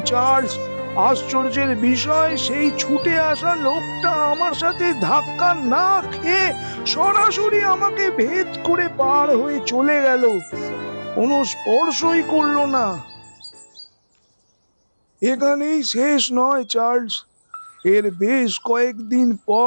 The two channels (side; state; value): both; inverted; correlation -1.00